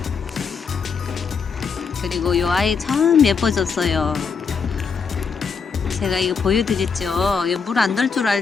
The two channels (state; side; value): quieter; right; 5.7 dB